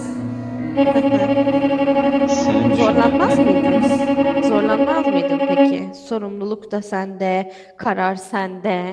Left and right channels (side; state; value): both; identical; correlation 1.00